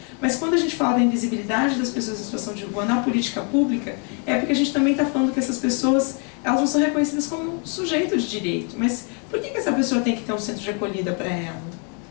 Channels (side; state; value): right; quieter; 38.5 dB